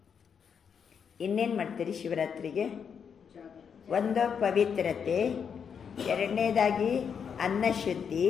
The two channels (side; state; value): right; quieter; 7.0 dB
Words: ಇನ್ನೇನು ಮಾಡ್ತೀರಿ ಶಿವರಾತ್ರಿಗೆ? ಒಂದು ಪವಿತ್ರತೆ, ಎರಡನೇದಾಗಿ ಅನ್ನ ಶುದ್ಧಿ,